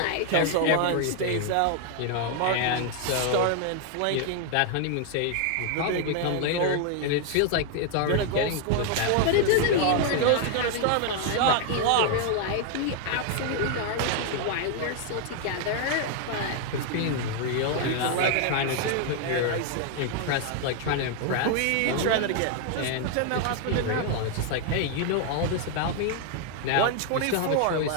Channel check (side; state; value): both; different; correlation 0.00